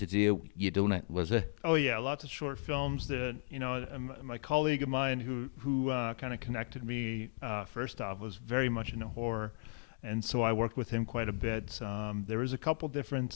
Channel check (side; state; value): right; silent; digital silence